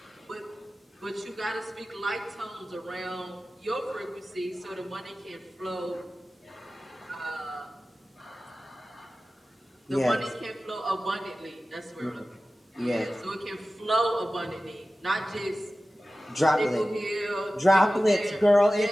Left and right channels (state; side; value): normal; both; correlation 0.96